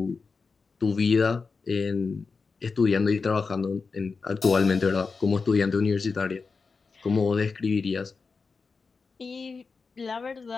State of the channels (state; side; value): quieter; right; 4.7 dB